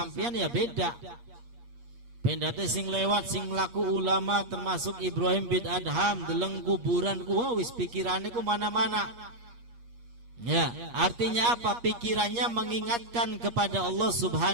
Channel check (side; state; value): left; late; 8.4 ms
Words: ya beda. Pendate sing lewat sing laku ulama termasuk Ibrahim bin Adham deleng kuburan ku wis pikirannya ku mana-mana. Ya, artinya apa? Pikirannya mengingatkan kepada Allah